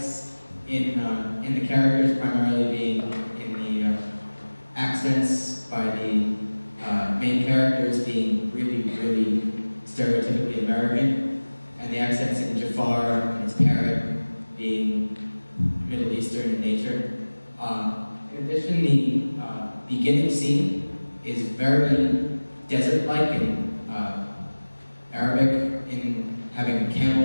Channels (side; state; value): both; inverted; correlation -1.00